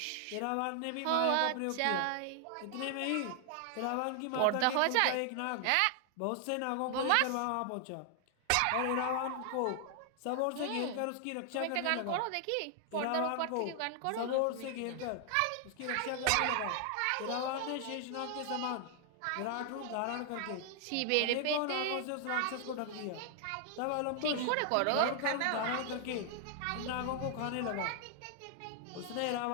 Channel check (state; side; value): different; both; correlation 0.00